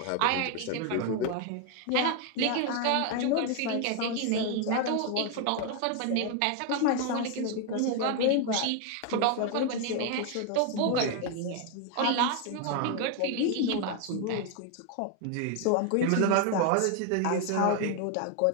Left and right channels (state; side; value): different; both; correlation 0.01